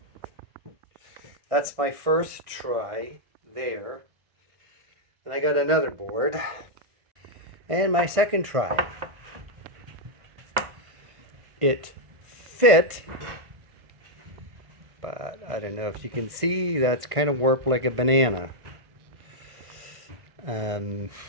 That's my first try there. And I got another board. And my second try. It fit, but I don't know if you can see, that's kind of warped like a banana. So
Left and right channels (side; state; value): left; late; 1.6 ms